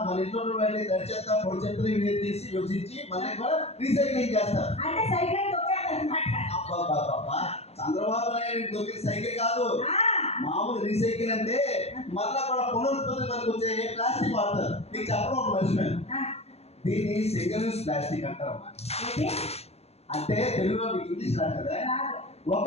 మన ఇంట్లో వెళ్ళి తడి చెత్త, పొడి చెత్తలు వేరు చేసి విభజించి మళ్ళీ కూడా రీసైక్లింగ్ చేస్తారు. అబ్బా చంద్రబాబు నాయుడు దొరికిన సైకిల్ కాదు, మామూలు రీసైకిల్ అంటే మళ్ళా కూడా పునరుత్పత్తి పనికి వచ్చే ప్లాస్టిక్ వాడతారు. నీకు చెప్పడం ఒక మర్చిపోయాను, దీన్ని సింగిల్ యూజ్ ప్లాస్టిక్ అంటారమ్మా. అంటే తెలుగులో మీకు ఇంగ్లీష్ రాదు కదా.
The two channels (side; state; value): right; late; 0.30 ms